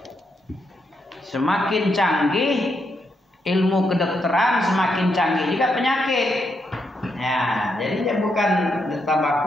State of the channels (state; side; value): normal; both; correlation 0.80